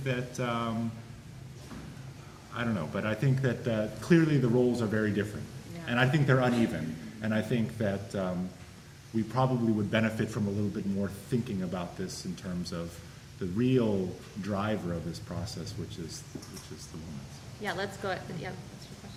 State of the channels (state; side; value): identical; both; correlation 1.00